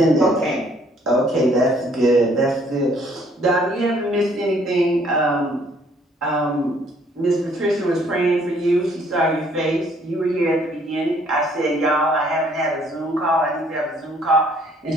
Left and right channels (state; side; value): normal; both; correlation 0.63